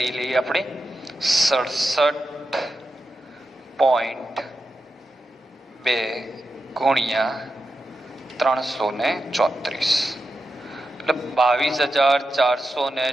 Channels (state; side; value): normal; both; correlation 0.89